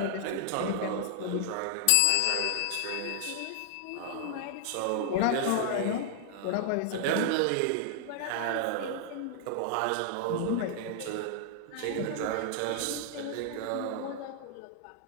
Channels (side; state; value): both; different; correlation -0.01